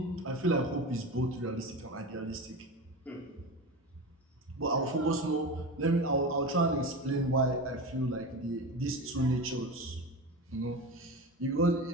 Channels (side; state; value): both; normal; correlation 0.26